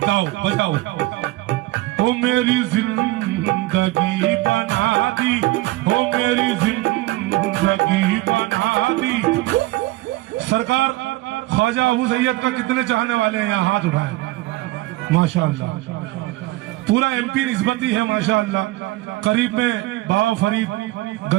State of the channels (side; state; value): left; quieter; 19.2 dB